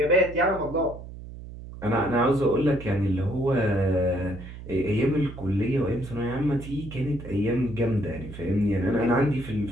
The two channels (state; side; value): noise; right; hum, 13 dB below the sound